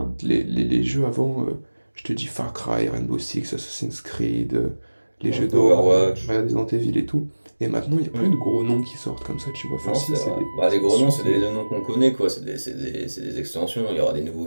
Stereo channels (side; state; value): both; inverted; correlation -1.00